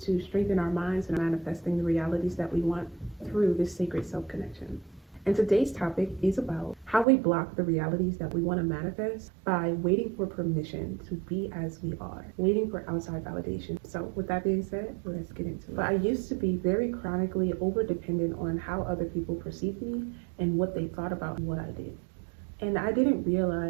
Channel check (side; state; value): left; drops out; at 7.1 s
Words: strengthen our minds and manifesting the realities that we want through this sacred self-connection. And today's topic is about how we block the realities that we want to manifest by waiting for permission to be as we are, waiting for outside validation. So with that being said, let's get into it. But I used to be very chronically over-dependent on how other people perceived me and what they thought about what I did. And I didn't